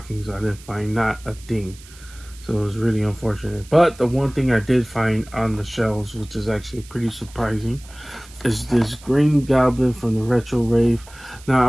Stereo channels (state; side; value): noise; right; hiss, 22 dB below the sound